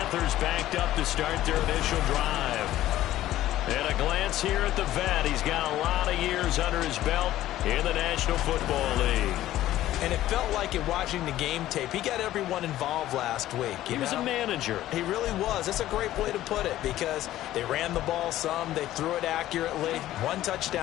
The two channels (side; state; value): right; quieter; 14.1 dB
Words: backed up to start their initial drive. And a glance here at the vet. He's got a lot of years under his belt in the National Football League. And it felt like in watching the game tape, he got everyone involved last week. He was a manager. He really was. That's a great way to put it, because they ran the ball some, they threw it accurately. One